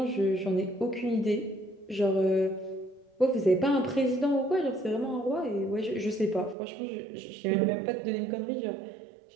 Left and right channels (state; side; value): drops out; left; at 6.6 s